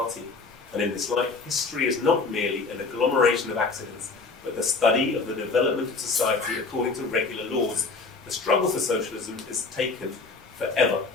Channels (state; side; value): quieter; right; 4.1 dB